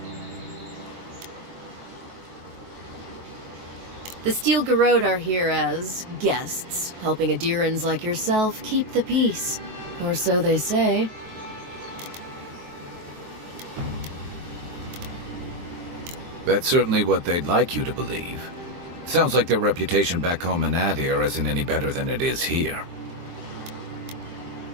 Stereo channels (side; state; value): left; late; 23 ms